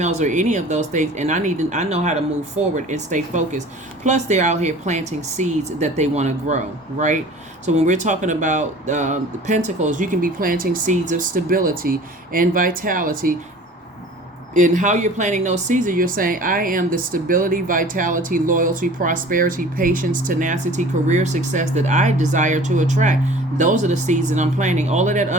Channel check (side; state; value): both; normal; correlation 0.44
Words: or any of those things. And I know how to move forward and stay focused. Plus, they're out here planting seeds that they want to grow, right? So when we're talking about the Pentacles, you can be planting seeds of stability and vitality. In how you're planting those seeds, you're saying, I am the stability, vitality, loyalty, prosperity, patience, tenacity, career success that I desire to attract. Those are the seeds that I'm planting. All of that